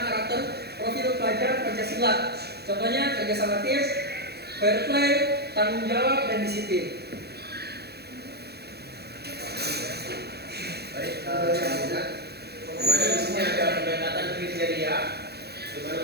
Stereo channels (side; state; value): left; late; 0.47 ms